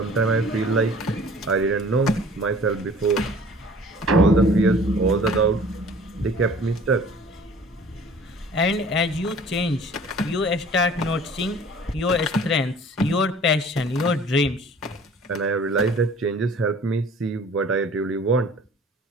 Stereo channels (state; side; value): normal; both; correlation 0.49